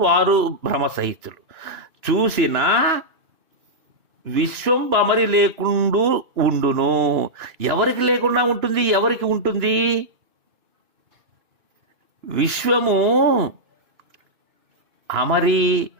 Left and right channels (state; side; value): late; left; 2.6 ms